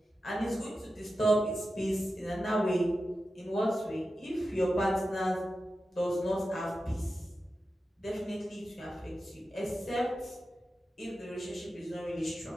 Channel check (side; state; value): both; normal; correlation 0.92